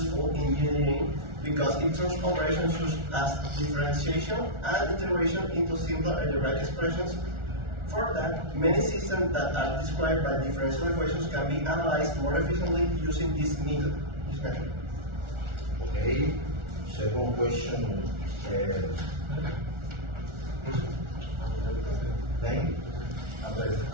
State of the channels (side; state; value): left; late; 1.4 ms